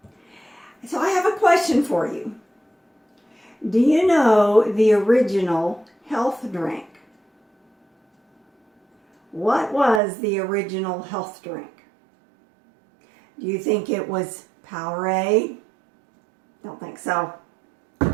So I have a question for you. Do you know the original health drink? What was the original health drink? Do you think it was Powerade? Don't think so.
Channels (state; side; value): drops out; left; at 10.0 s